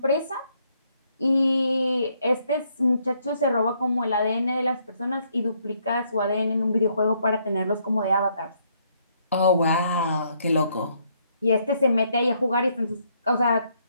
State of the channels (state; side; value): inverted; both; correlation -0.72